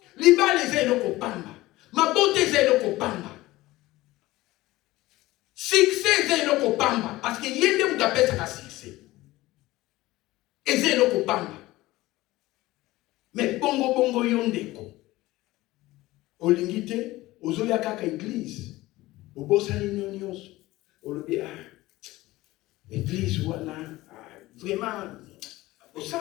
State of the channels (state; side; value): quieter; right; 18.3 dB